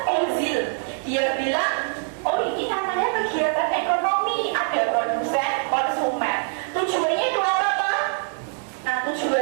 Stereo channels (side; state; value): left; silent; 58 dB below the other